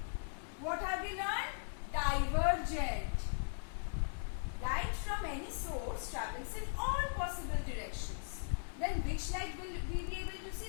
what have we learned? Divergent. divergent. Light from any source travels in all possible directions. Then which light will we be able to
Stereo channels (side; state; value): right; silent; 52 dB below the other